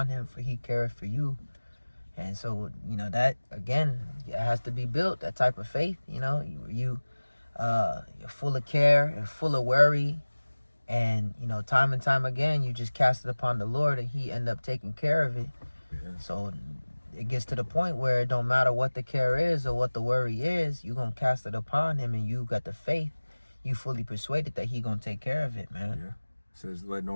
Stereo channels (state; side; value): inverted; both; correlation -1.00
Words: him, for he careth for you. And so, that, again, it has to be built, that type of faith. You're full of care and full of worry. And, time and time again, you just cast it upon the Lord, and he end up taking care of it. Yeah. So it gets to the point where it don't matter what the care is or what the worry is, you're going to cast it upon him, and you got the faith. You fully persuaded that he going to take care of it, man. Yeah. It says, that